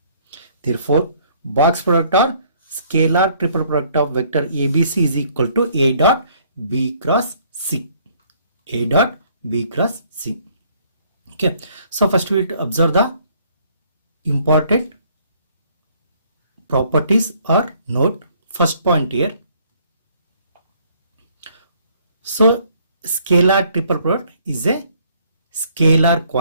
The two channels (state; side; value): inverted; both; correlation -0.63